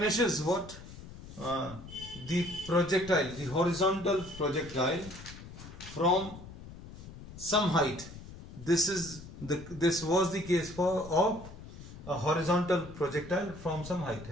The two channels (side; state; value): left; noise; rumble, 15 dB below the sound